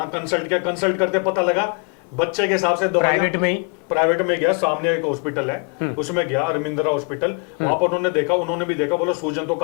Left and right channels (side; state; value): right; quieter; 37.1 dB